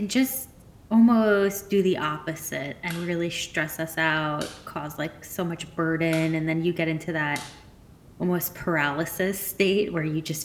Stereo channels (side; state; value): both; identical; correlation 1.00